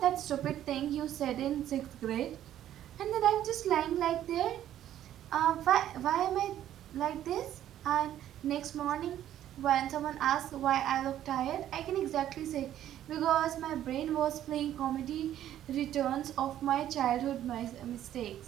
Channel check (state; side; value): quieter; left; 11.7 dB